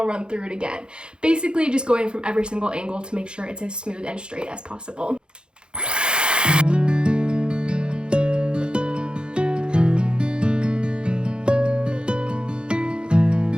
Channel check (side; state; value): left; late; 0.051 ms